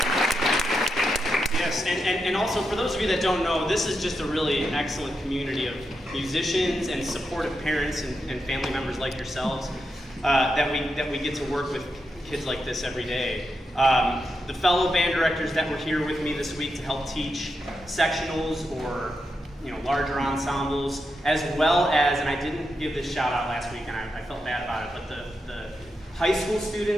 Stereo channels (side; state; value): both; normal; correlation 0.85